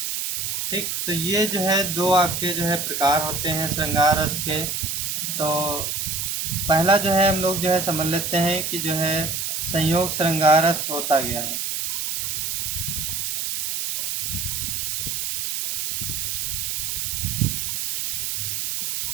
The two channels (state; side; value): noise; right; hiss, 2 dB below the sound